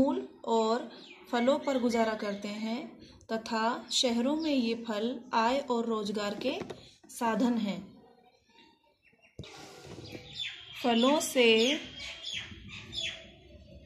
और फलों पर गुजारा करते हैं तथा शहरों में ये फल आय और रोजगार के साधन हैं। फलों से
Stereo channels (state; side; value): identical; both; correlation 1.00